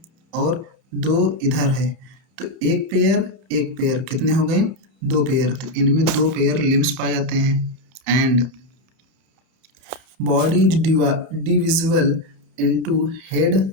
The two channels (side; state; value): left; late; 30 ms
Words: और दो इधर है, तो एक पेयर कितने हो गए, दो पेयर, तो इनमें दो पेयर लिम्स पाए जाते हैं। And body is divisible into head